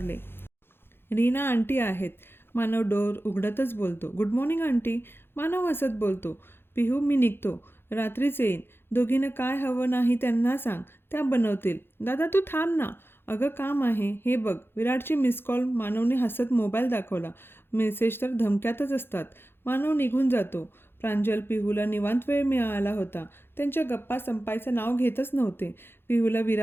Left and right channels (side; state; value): right; late; 0.11 ms